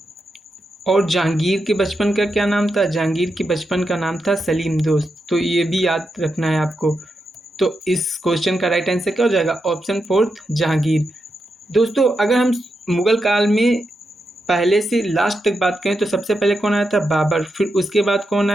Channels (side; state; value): both; normal; correlation 0.86